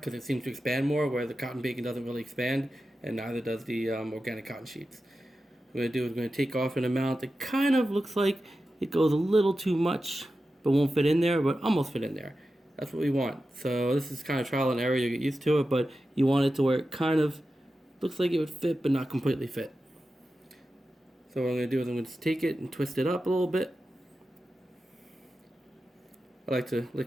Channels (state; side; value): normal; both; correlation 0.92